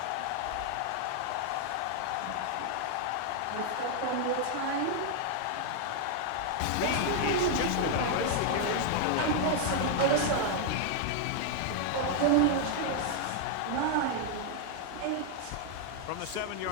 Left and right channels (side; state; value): both; different; correlation 0.00